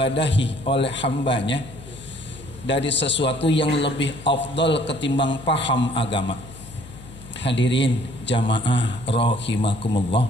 oleh hambanya dari sesuatu yang lebih afdal ketimbang paham agama. Hadirin jamaah rahimakumullah,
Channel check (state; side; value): noise; left; hum, 17 dB below the sound